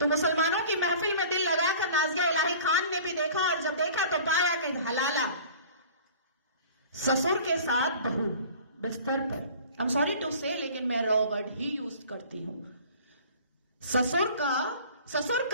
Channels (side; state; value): both; inverted; correlation -0.45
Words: मुसलमानों की महफिल में दिल लगाकर नाज़िया इलाही खान ने भी देखा, और जब देखा तो पाया कि हलाला ससुर के साथ बहू बिस्तर पर, आई एम सॉरी टू से, लेकिन मैं रॉ वर्ड ही यूज करती हूं। ससुर